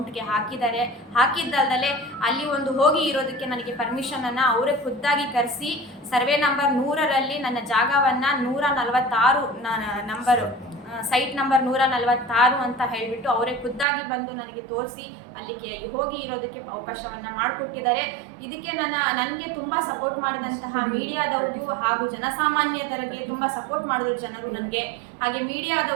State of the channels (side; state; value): left; drops out; at 13.9 s